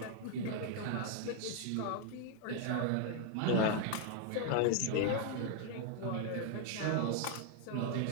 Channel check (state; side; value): different; both; correlation 0.00